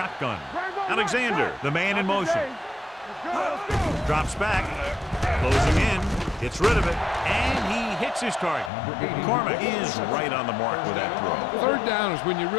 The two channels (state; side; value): drops out; right; at 8.7 s